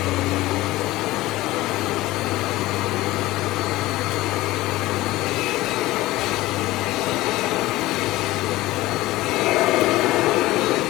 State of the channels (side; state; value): right; quieter; 17.9 dB